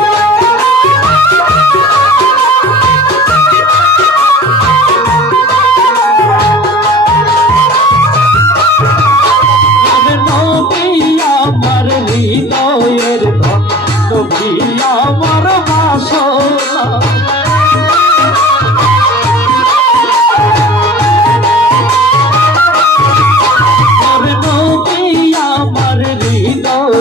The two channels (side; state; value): both; normal; correlation 0.43